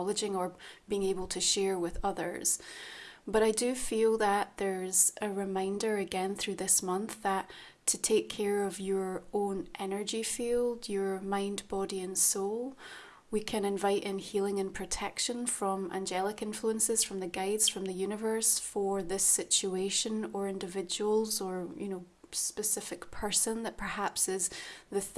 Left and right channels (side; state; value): both; identical; correlation 1.00